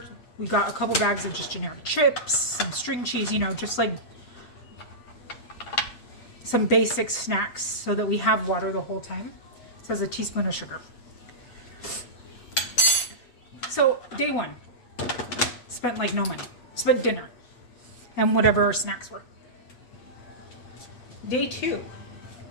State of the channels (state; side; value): late; right; 8.1 ms